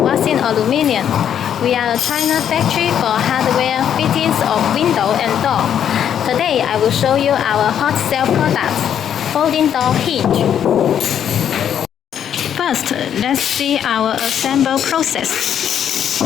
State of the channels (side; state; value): right; quieter; 9.2 dB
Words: Wasin Aluminium. We are a China factory for hardware fittings of window and door. Today I will show you our hot sale product, folding door hinge. First, let's see our assemble